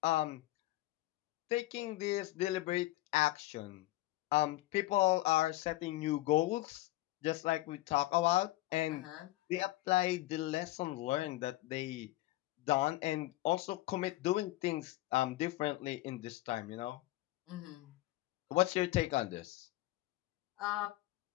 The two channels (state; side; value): quieter; right; 17.6 dB